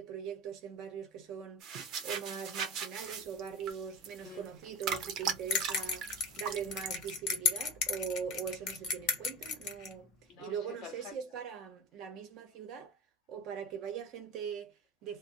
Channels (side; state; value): both; normal; correlation 0.30